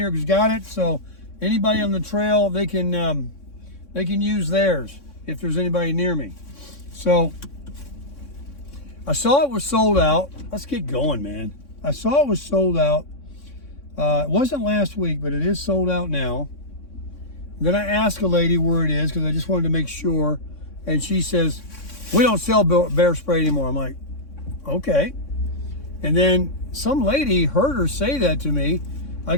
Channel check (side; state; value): right; late; 3.6 ms